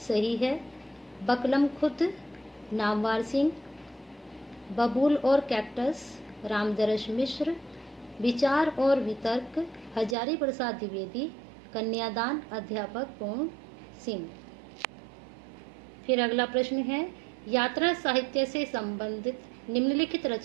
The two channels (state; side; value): drops out; left; at 10.2 s